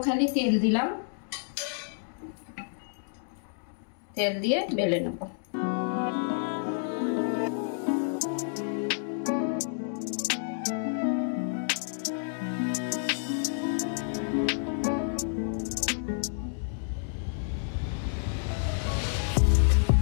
খালি তেল দিলাম, তেল দিয়ে বেলে নেব।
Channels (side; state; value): right; silent; digital silence